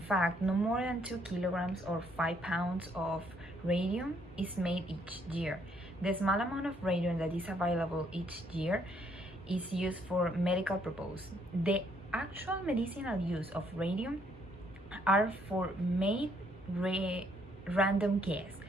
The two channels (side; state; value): both; normal; correlation 0.69